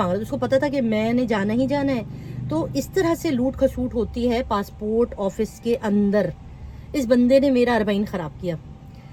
رہا تھا، اس کو پتا تھا کہ میں نے جانا ہی جانا ہے۔ تو اس طرح سے لوٹ کھسوٹ ہوتی ہے پاسپورٹ آفس کے اندر۔ اس بندے نے میرا اربعین خراب کیا۔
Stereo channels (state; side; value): identical; both; correlation 1.00